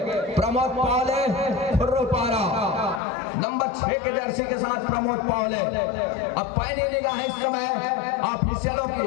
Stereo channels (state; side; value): drops out; right; at 3.0 s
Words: प्रमोद पावले खुर्रपारा नंबर 6 के जर्सी के साथ प्रमोद पावले। अब पहली निगाह है इस समय ऑफिशियलों की,